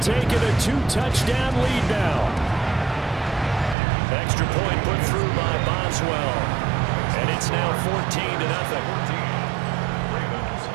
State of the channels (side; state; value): left; drops out; at 3.8 s